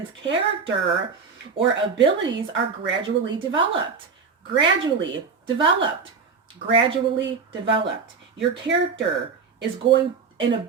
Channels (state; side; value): quieter; left; 5.3 dB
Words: character or abilities are gradually developed. Gradually developed. Gradually developed. Your character is going and